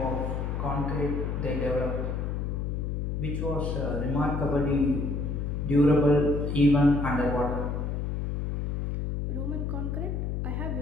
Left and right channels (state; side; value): noise; left; hum, 1 dB below the sound